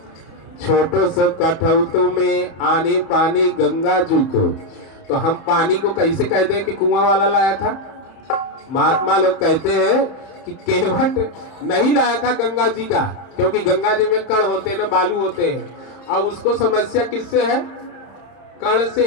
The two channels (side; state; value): right; late; 30 ms